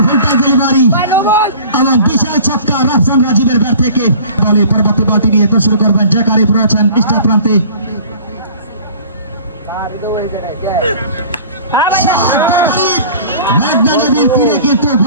ফুলটাই ডেলিভারি, আমার বিশাল ছক্কা রাফসান রাজীবের ব্যাট থেকে। বলে পরবর্তী বলটি নিয়ে তো শুরু করবেন জ্যাকারি রয়েছেন পৃষ্ঠা প্রান্তে।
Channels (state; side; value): inverted; both; correlation -0.46